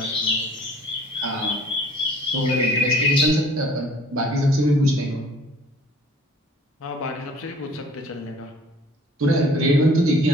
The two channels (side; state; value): both; normal; correlation 0.53